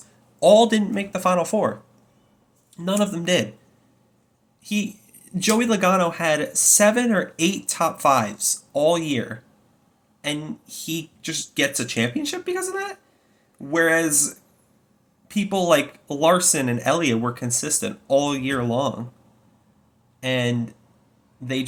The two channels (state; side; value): identical; both; correlation 1.00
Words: all didn't make the Final Four. None of them did. He Joey Logano had 7 or 8 top fives all year, and he just gets a championship because of that. Whereas people like Larson and Elliott were consistent all year long, and they